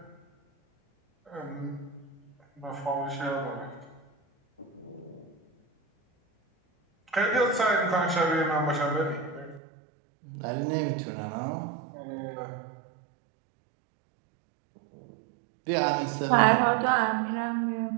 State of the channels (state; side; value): drops out; left; at 9.6 s